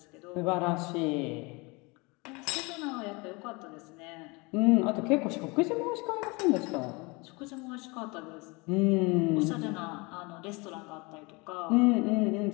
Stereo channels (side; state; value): right; quieter; 27.0 dB